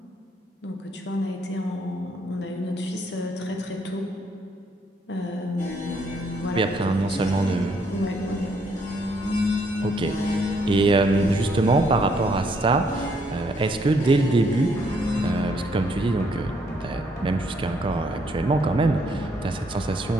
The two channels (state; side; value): normal; both; correlation 0.70